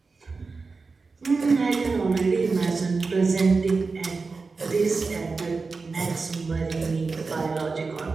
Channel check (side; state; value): left; quieter; 4.3 dB